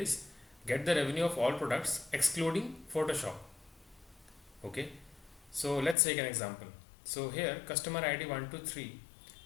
get the revenue of all products excluding Photoshop. Okay. So let's take an example. So here customer ID 123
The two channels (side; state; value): right; drops out; at 6.0 s